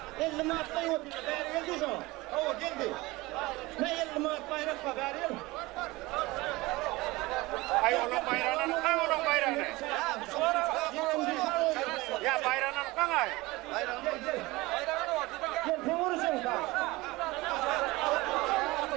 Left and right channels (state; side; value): quieter; left; 21.2 dB